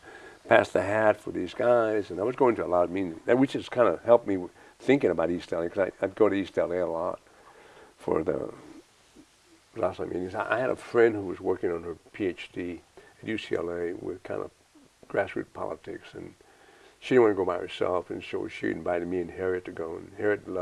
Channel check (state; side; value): identical; both; correlation 1.00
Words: pass the hat for these guys. And I was going to a lot of meetings, which just kind of helped me thinking about East LA, because I'd go to East LA a lot for the last meetings. I had a friend who was working on her PhD at UCLA with kind of grassroots politics, and she didn't want to go by herself, and so she invited me and Harriet to go. And Harriet